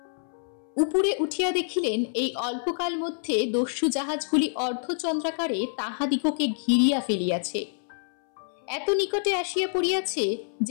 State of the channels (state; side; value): silent; right; 60 dB below the other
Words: উপরে উঠিয়া দেখিলেন এই অল্পকাল মধ্যে দস্যু জাহাজগুলি অর্ধচন্দ্রাকারে তাহাদিগকে ঘিরিয়া ফেলিয়াছে। এত নিকটে আসিয়া পড়িয়াছে